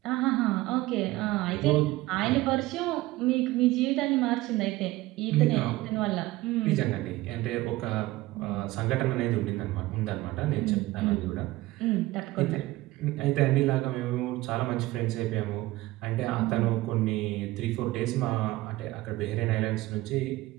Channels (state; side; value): quieter; left; 18.3 dB